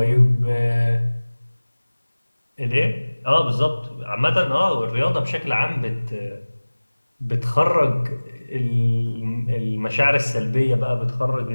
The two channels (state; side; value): inverted; both; correlation -1.00